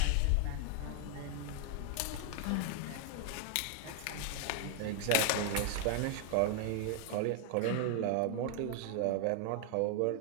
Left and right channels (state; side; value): different; both; correlation 0.00